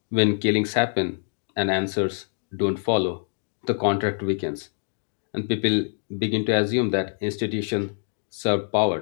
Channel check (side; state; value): right; silent; 62 dB below the other